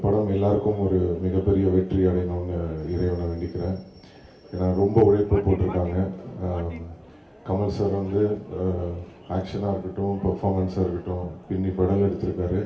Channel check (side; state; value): both; identical; correlation 1.00